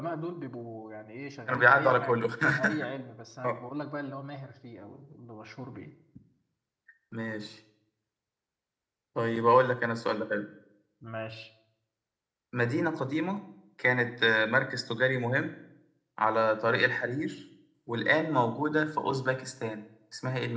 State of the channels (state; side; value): identical; both; correlation 1.00